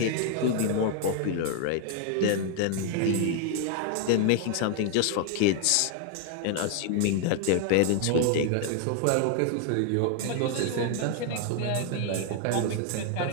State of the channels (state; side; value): different; both; correlation 0.00